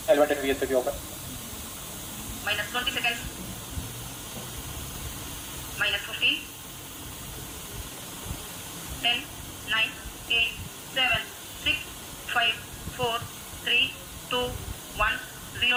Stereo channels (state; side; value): identical; both; correlation 1.00